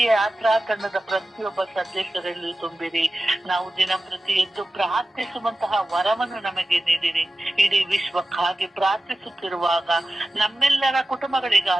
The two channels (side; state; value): both; normal; correlation 0.95